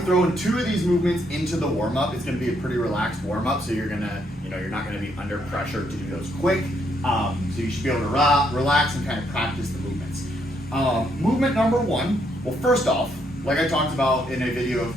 throwing two of these movements into the warm-up. It's going to be a pretty relaxed warm-up, so you're not going to be under pressure to do those quick. So you should be able to relax and kind of practice the movements. Movement number one, well, first off, like I talked about in a video a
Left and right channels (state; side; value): normal; both; correlation 0.74